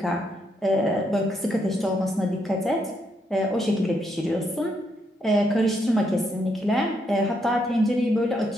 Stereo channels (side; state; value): both; normal; correlation 0.77